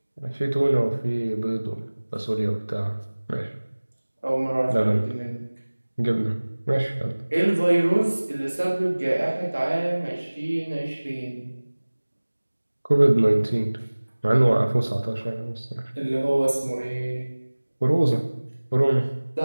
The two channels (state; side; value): inverted; both; correlation -1.00